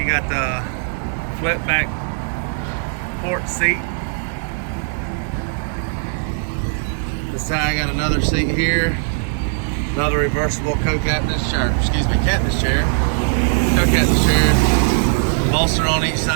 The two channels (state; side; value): silent; left; digital silence